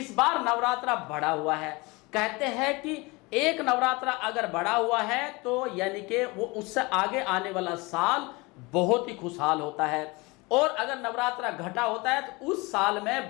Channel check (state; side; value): quieter; right; 25.0 dB